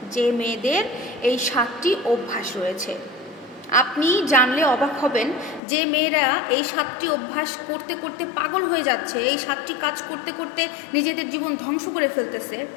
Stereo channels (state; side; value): drops out; right; at 5.6 s